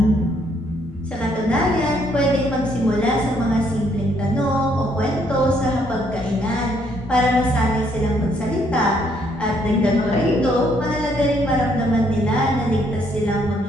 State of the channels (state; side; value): normal; both; correlation 0.69